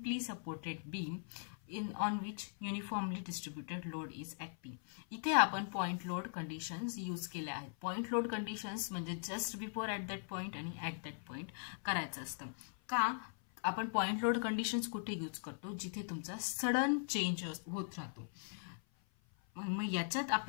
supported beam on which uniformly distributed load is acting. इथे आपण point load conditions use केल्या आहेत. Point load conditions म्हणजे just before at that point आणि at that point करायचं असतं. का आपण पॉइंट लोड कंडिशन्स कुठे यूज करतो जिथे तुमचा सडन चेंज होत राहतो. मग याच्यात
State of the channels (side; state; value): right; silent; 51 dB below the other